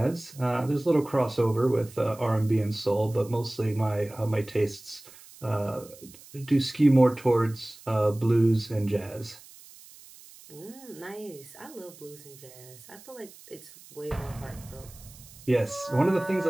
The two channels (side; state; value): right; noise; hiss, 21 dB below the sound